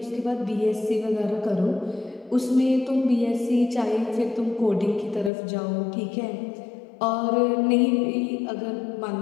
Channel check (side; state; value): right; drops out; at 5.3 s